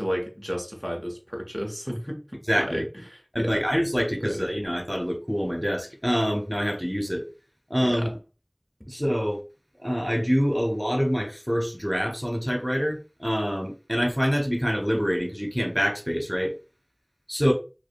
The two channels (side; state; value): both; identical; correlation 1.00